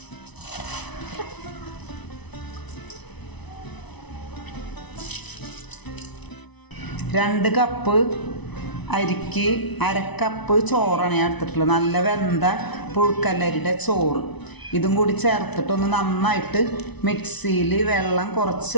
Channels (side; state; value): right; late; 1.0 ms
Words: രണ്ട് കപ്പ് അരിക്ക് 1/2 കപ്പ് ചോറാണ് ഞാൻ എടുത്തിട്ടുള്ളത്. നല്ല വെന്ത പുഴുക്കല്ലരിയുടെ ചോറ്. ഇതും കൂടി ചേർത്തിട്ടൊന്ന് നന്നായിട്ട് മിക്സിയിൽ വെള്ളം കുറച്ച്